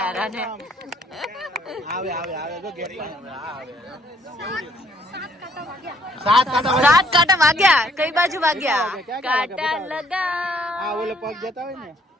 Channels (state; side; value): normal; both; correlation 0.65